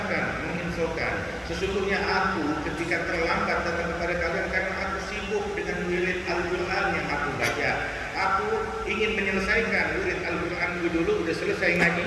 menginfokan, sesungguhnya aku ketika terlambat datang kepada kalian karena aku sibuk dengan wirid Al-Quran yang aku baca. Aku ingin menyelesaikan wirid Al-Quran dulu, udah selesai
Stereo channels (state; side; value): identical; both; correlation 1.00